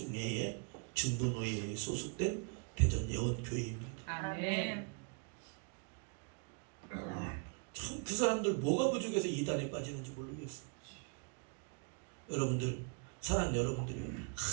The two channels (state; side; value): quieter; left; 38.4 dB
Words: 중부노회에 소속된 대전 예원교회입니다. 아멘. 참 그 사람들 뭐가 부족해서 이단에 빠지는지 모르겠어요. 여러분들, 사랑하는 여러분들이